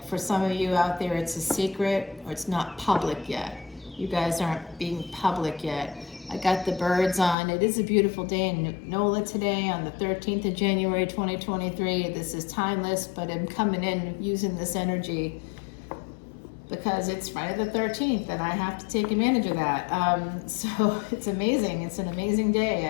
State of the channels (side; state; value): right; drops out; at 7.4 s